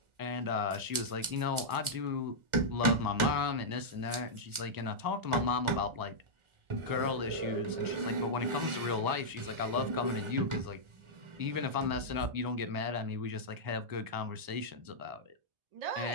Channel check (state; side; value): late; left; 1.4 ms